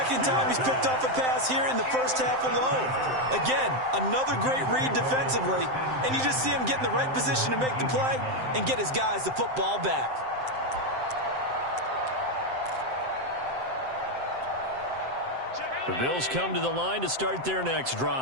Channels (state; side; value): late; left; 7.7 ms